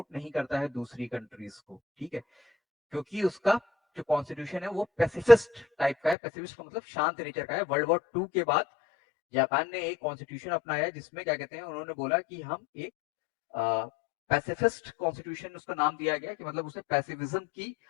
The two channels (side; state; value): right; drops out; at 6.2 s